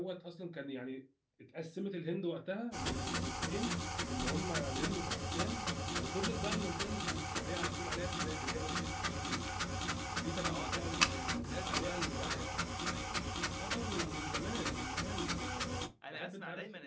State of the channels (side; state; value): both; identical; correlation 1.00